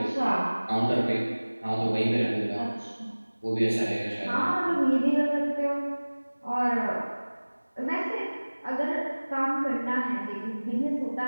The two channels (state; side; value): inverted; both; correlation -1.00